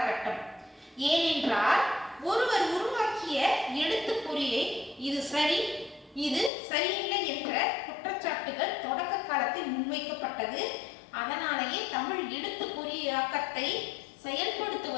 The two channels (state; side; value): drops out; right; at 6.5 s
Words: ஏனென்றால் ஒருவர் உருவாக்கிய எழுத்துப்பொறியை இது சரி, இது சரியில்லை என்ற குற்றச்சாட்டுகள் தொடக்க காலத்தில் முன்வைக்கப்பட்டது. அதனாலேயே தமிழ் எழுத்துப்பொறியாக்கத்தை